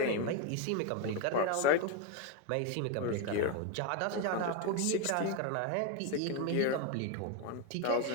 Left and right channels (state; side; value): different; both; correlation 0.02